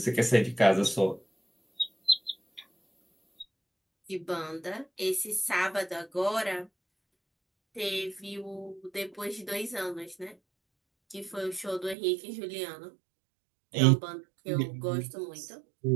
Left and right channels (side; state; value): left; drops out; at 12.0 s